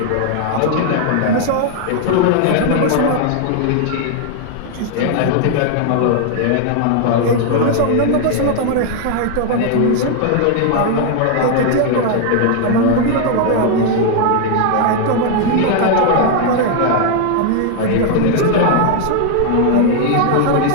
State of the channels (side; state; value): both; different; correlation 0.00